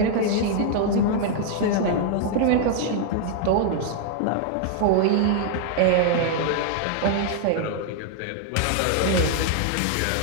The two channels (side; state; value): both; different; correlation -0.01